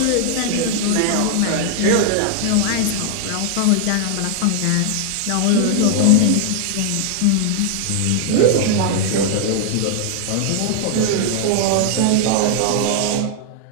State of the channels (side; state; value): both; different; correlation 0.00